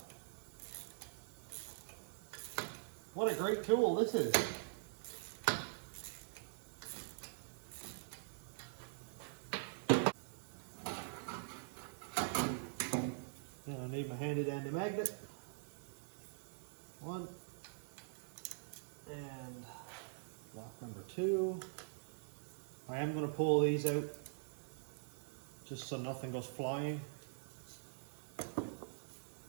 What a great tool this is. And I need my handy dandy magnet. One. And lock number 2. I am going to pull these out just so nothing goes flying.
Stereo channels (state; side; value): silent; left; digital silence